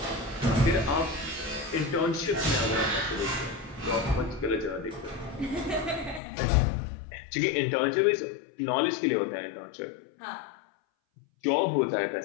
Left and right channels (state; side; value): drops out; right; at 6.2 s